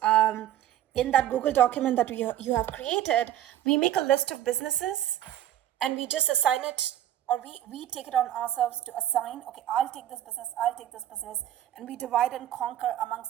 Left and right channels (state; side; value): quieter; left; 12.2 dB